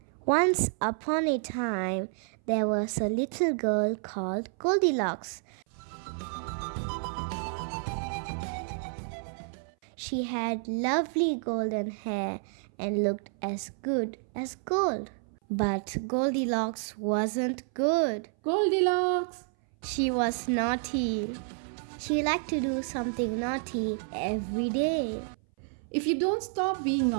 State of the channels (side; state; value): left; silent; 58 dB below the other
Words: Once upon a time, there was a little girl called Goldilocks. She had lovely golden hair and looked as good as gold. But Goldilocks wasn't good. Goldilocks! She was naughty. She liked to do something naughty every day. If you don't stop being